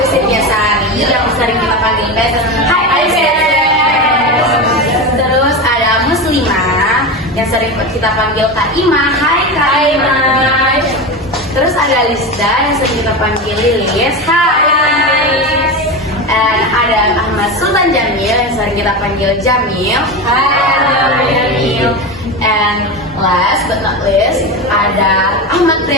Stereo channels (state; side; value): normal; both; correlation 0.21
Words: Cynthia Sari yang sering kita panggil Bes. Hai Bes. Terus ada Muslimah yang sering kita panggil Kak Ima. Hai Kak Ima. Terus ada Lista yang sering kita panggil Lilis. Hai. And ada Ahmad Sultan Jamil yang sering kita panggil Jamil. Hai Jamil. And last but not least ada Ahmad